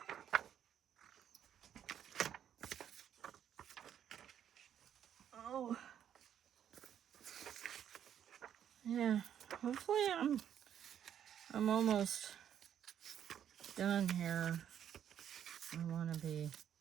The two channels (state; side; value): quieter; left; 9.5 dB